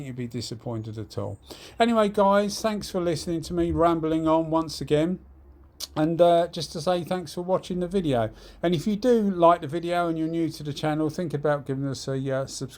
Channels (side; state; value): both; identical; correlation 1.00